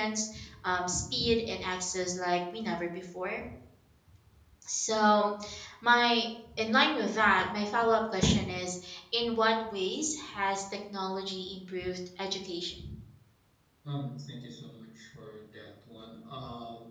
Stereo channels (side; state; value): both; identical; correlation 1.00